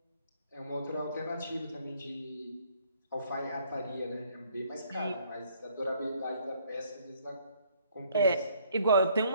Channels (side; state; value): both; inverted; correlation -0.64